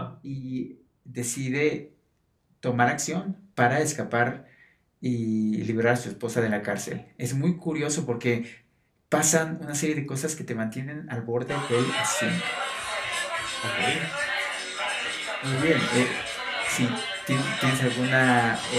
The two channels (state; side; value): identical; both; correlation 1.00